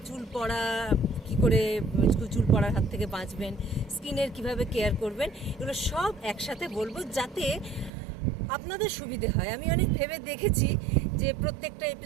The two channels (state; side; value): drops out; left; at 7.9 s